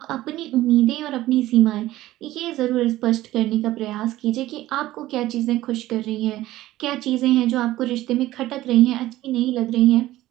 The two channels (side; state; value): left; quieter; 15.8 dB